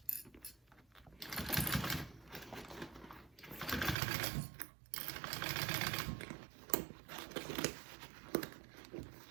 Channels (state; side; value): drops out; left; at 4.0 s